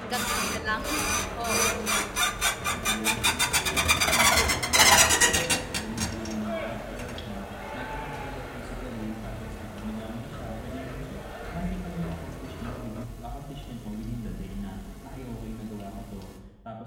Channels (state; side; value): identical; both; correlation 1.00